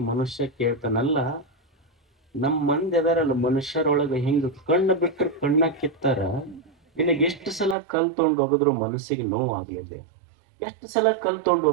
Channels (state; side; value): drops out; left; at 7.8 s